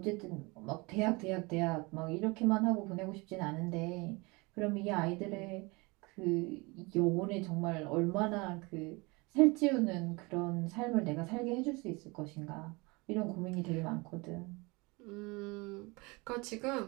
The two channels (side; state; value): left; quieter; 26.3 dB